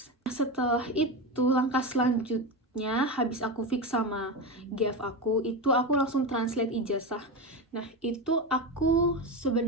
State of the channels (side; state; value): both; normal; correlation 0.18